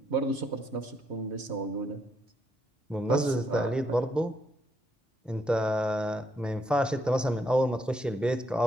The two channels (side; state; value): both; normal; correlation 0.75